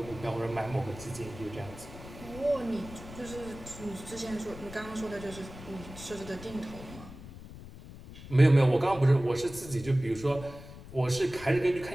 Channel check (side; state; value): left; noise; rumble, 15 dB below the sound